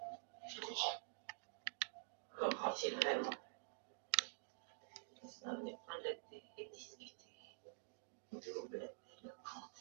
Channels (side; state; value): left; silent; digital silence